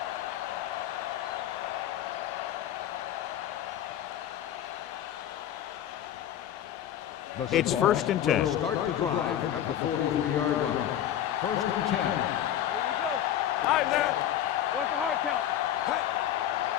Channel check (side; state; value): right; quieter; 11.2 dB